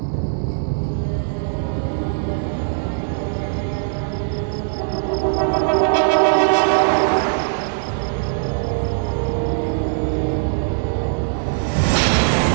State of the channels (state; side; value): silent; left; 61 dB below the other